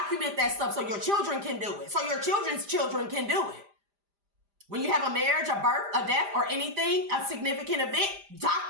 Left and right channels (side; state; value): left; late; 5.0 ms